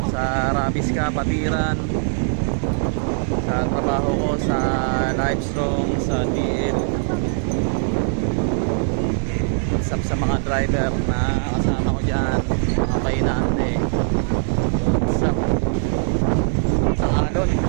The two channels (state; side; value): silent; left; digital silence